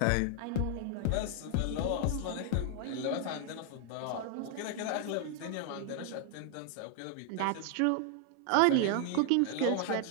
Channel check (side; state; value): both; different; correlation 0.00